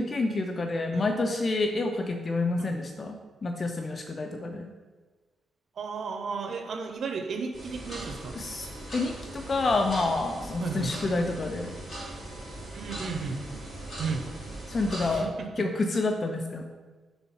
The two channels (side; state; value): both; normal; correlation 0.83